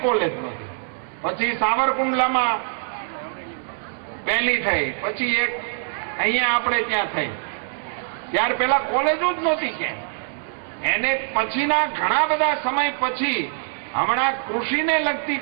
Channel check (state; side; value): silent; left; 63 dB below the other